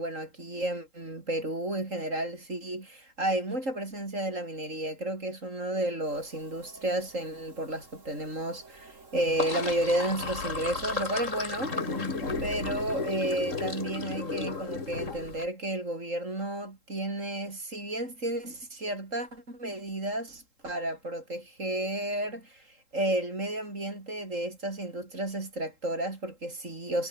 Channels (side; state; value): left; late; 3.7 ms